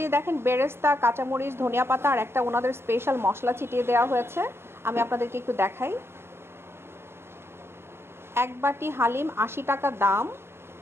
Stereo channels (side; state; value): left; late; 0.12 ms